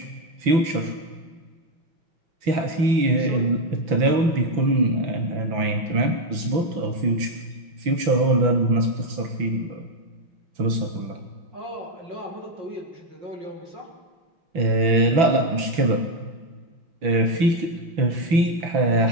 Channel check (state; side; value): late; left; 6.0 ms